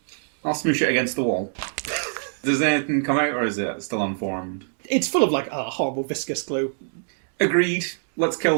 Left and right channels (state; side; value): silent; left; digital silence